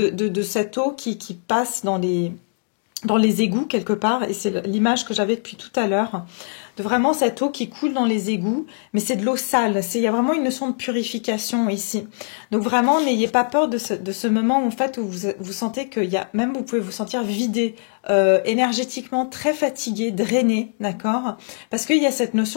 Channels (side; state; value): right; silent; 64 dB below the other